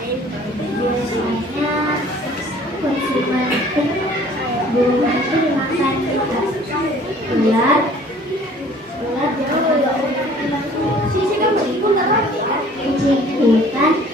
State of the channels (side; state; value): both; normal; correlation 0.52